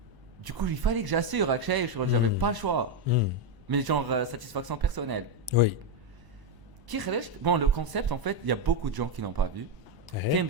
Du coup, il fallait que j'assure, j'avais pas le choix. Mais genre, satisfaction personnelle. Oui. Bon, le concept, en fait, il y a beaucoup de gens qui l'ont pas vu. كاين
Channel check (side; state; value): left; late; 1.0 ms